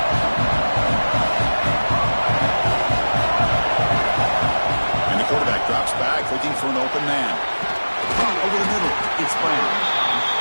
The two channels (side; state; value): both; inverted; correlation -1.00